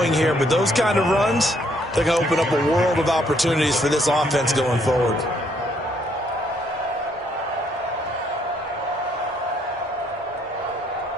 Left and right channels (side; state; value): both; normal; correlation 0.69